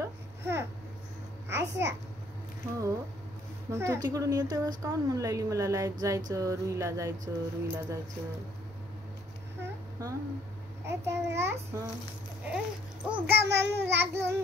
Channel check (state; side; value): normal; both; correlation 0.64